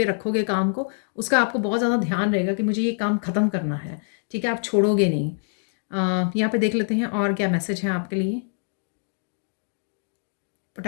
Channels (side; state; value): right; silent; 61 dB below the other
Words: रखोगे काम को, उसका आपको बहुत ज़्यादा ध्यान रहेगा कि मुझे ये काम ख़त्म करना है। ठीक है, आप छोड़ोगे नहीं। यहाँ पे देख लेते हैं और क्या मैसेज है आपके लिए।